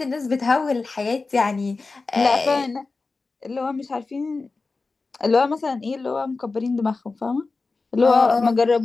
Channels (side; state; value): right; quieter; 3.9 dB